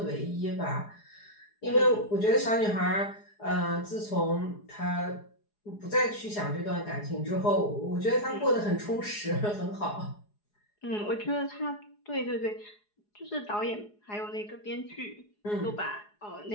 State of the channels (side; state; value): right; late; 4.8 ms